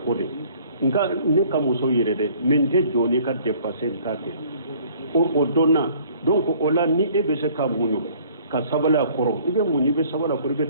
de nka ne ka muso yɛrɛ dɛ mais n tɛ jɔ n'i ka dépense n t'a kɛ o donna donc o la ni e bɛ se ka muɲu ka sabali a kɔrɔ i bɛ muɲu i bɛ sabali a kɔrɔ i bɛ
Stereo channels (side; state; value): both; inverted; correlation -0.56